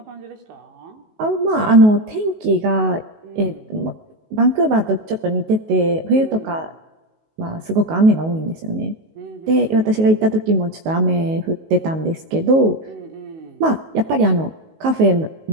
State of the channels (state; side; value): late; left; 19 ms